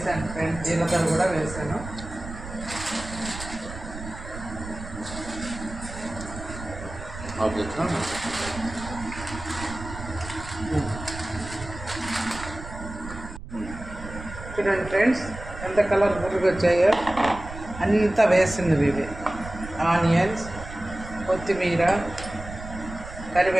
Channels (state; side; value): noise; right; rumble, 11 dB below the sound